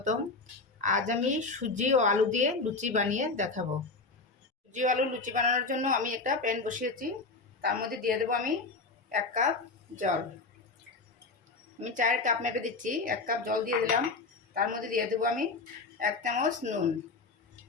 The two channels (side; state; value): right; quieter; 3.9 dB